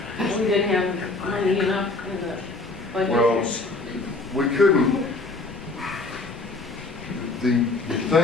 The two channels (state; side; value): quieter; right; 3.4 dB